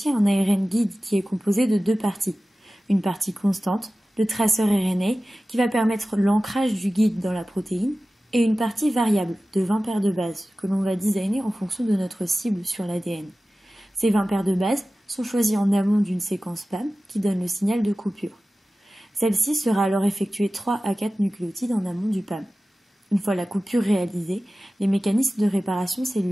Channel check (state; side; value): normal; both; correlation 0.96